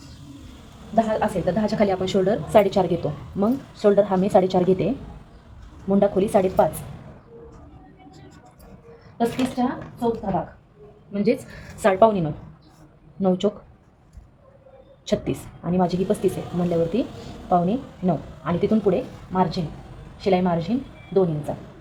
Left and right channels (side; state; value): both; identical; correlation 1.00